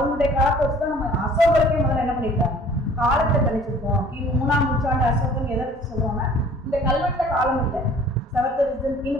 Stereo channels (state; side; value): normal; both; correlation 0.52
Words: காலத்தை வச்சுதான் நம்ம அசோகருக்கே முதல்ல என்ன பண்ணிருக்காங்க காலத்தை கணிச்சிருக்கோம். 3ஆம் நூற்றாண்டு அசோகன் எதை வச்சு சொல்லுவாங்க, இந்த கல்வெட்டுல காலம் இல்லை,